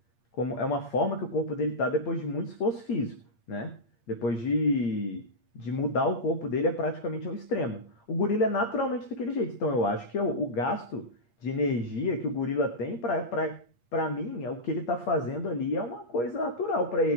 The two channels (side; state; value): right; late; 8.6 ms